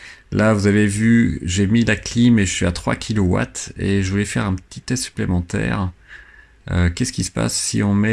Là, vous avez vu, j'ai mis la clim et je suis à 3 kW et je voulais faire un petit test supplémentaire. Qu'est-ce qui se passe si on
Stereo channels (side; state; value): both; identical; correlation 1.00